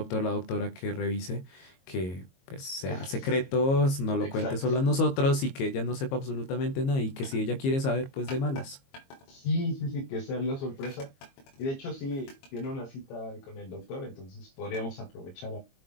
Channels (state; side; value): late; right; 22 ms